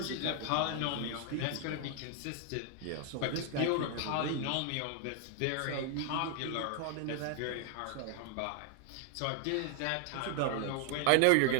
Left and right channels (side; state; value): both; different; correlation 0.00